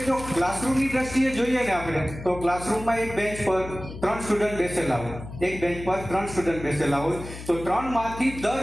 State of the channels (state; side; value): noise; left; hum, 12 dB below the sound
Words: જો ક્લાસરૂમની દ્રષ્ટિએ જોઈએ ને આપણે, તો ક્લાસરૂમમાં એક બેન્ચ પર 3 સ્ટુડન્ટ બેસેલા હોય, એક બેન્ચ પર 3 સ્ટુડન્ટ બેસેલા હોય, તો 3 માંથી